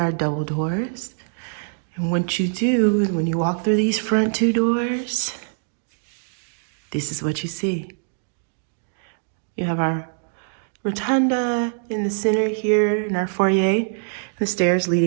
double doors. And what you do is when you walk through these front two doors, this is what you see. You have our rotunda in the center here in our foyer, the stairs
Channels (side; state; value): left; silent; digital silence